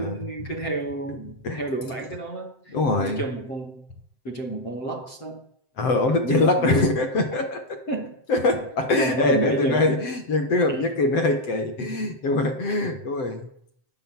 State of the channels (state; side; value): late; right; 7.7 ms